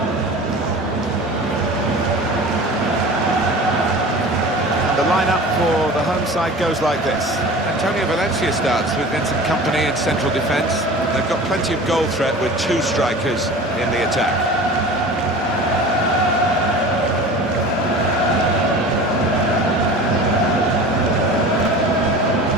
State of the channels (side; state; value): both; normal; correlation 0.38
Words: The lineup for the home side goes like this. Antonio Valencia starts with Vincent Kompany in central defence. They've got plenty of goal threat with 2 strikers in the attack.